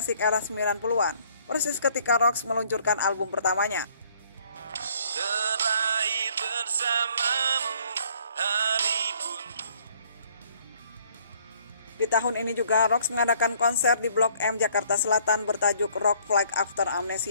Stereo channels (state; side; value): inverted; both; correlation -0.61